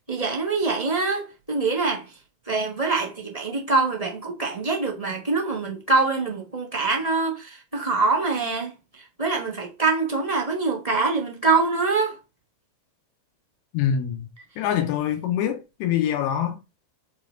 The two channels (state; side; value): late; right; 1.7 ms